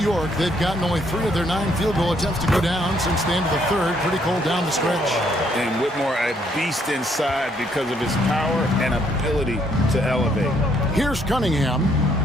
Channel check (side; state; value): both; normal; correlation 0.69